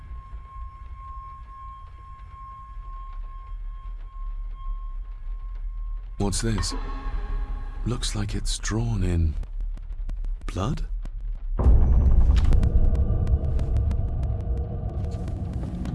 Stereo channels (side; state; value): both; identical; correlation 1.00